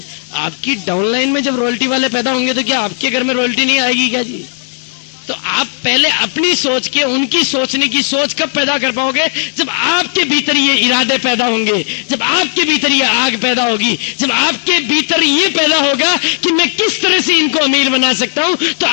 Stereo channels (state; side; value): silent; right; digital silence